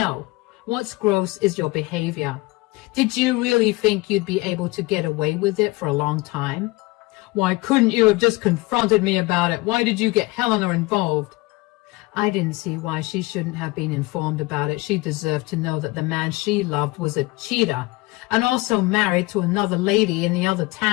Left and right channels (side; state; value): right; quieter; 22.4 dB